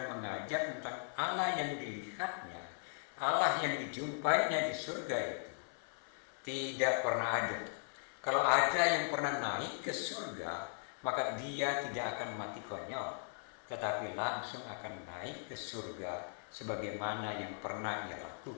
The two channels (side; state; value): right; silent; 52 dB below the other